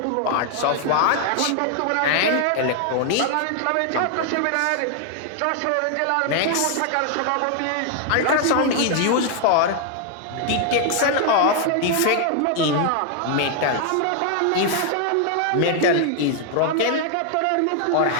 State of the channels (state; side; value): different; both; correlation 0.00